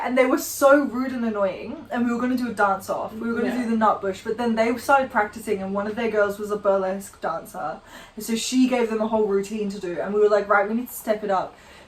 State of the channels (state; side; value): identical; both; correlation 1.00